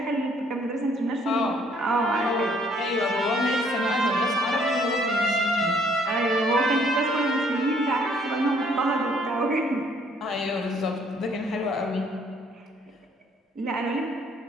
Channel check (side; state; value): both; normal; correlation 0.63